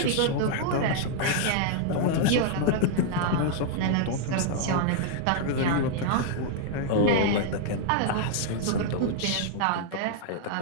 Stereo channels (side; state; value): both; different; correlation -0.01